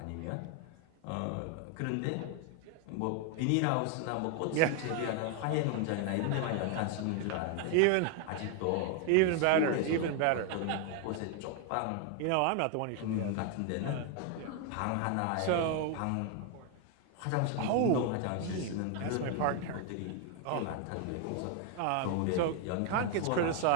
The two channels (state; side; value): different; both; correlation 0.01